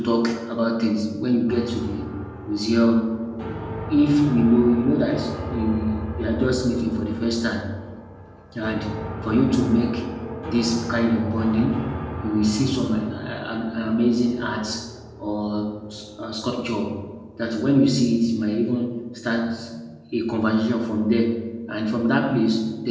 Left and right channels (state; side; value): identical; both; correlation 1.00